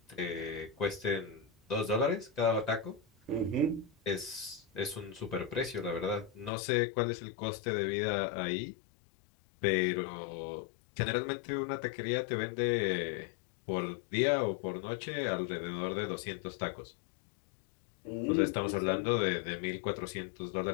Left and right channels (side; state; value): right; drops out; at 6.5 s